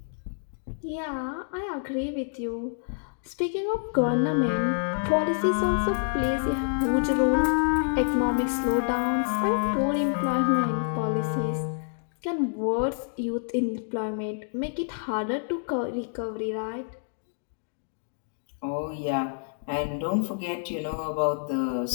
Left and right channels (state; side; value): silent; right; digital silence